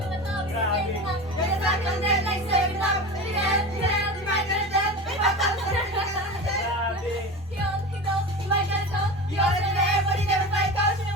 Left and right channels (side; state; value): both; normal; correlation 0.29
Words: to the top, you get back on that like serving up. You might get it, you might get it. You might get it, you also know everybody never fight coach. You